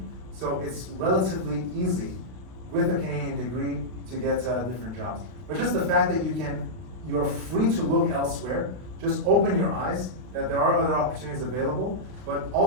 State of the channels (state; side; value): late; left; 32 ms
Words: So it's relatively easy with a Canadian degree to get different jobs. But just the fact that you're free to look elsewhere, just open your eyes that there are other opportunities available, but